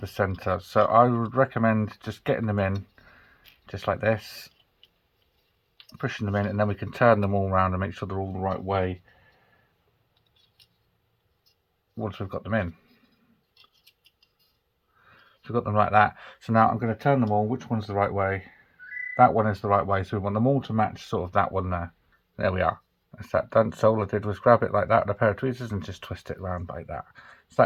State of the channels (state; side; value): identical; both; correlation 1.00